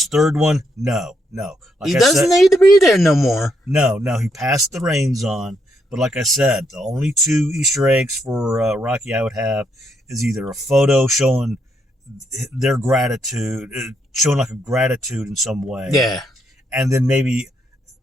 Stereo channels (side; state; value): both; normal; correlation 0.76